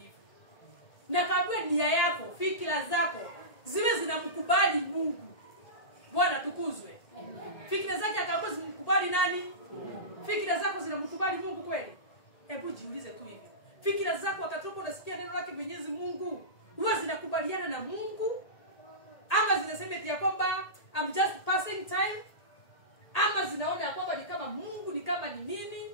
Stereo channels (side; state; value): right; late; 1.8 ms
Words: Na kaambiwa nia yako, fikra zako ziwe zinamkubali Mungu. Bwana tukuzwe. Fikra zake akaambiwa zimkubali nani? Fikra zako zinamkubali Mungu kweli? Hebu jiulize tu hivi. Fikra zako wakati unasikia neno lake Mwenyezi Mungu, huwa zinakubaliana na Mungu? Ama zinasema eti ya kwamba I'm just passing time? Ama zinaona ya kwamba ni kama Mungu, ni kama ni nini?